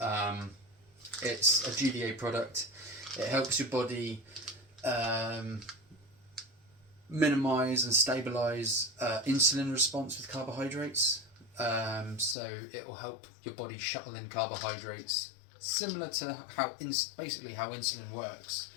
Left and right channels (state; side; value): drops out; right; at 12.4 s